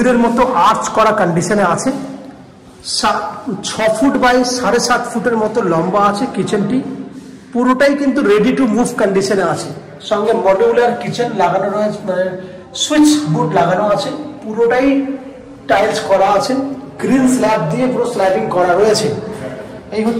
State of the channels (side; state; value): both; identical; correlation 1.00